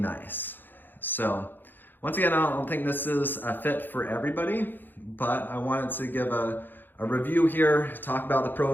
So once again, I don't think this is a fit for everybody, but I wanted to give a review here, talk about the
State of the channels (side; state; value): right; late; 0.092 ms